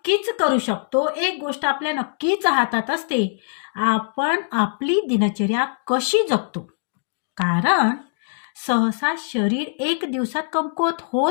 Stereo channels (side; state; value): right; silent; digital silence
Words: करू शकतो, एक गोष्ट आपल्या नक्कीच हातात असते, आपण आपली दिनचर्या कशी जगतो. कारण सहसा शरीर एक दिवसात कमकुवत